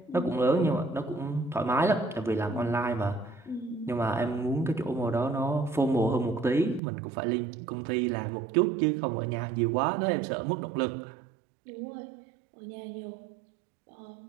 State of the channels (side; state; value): left; drops out; at 6.8 s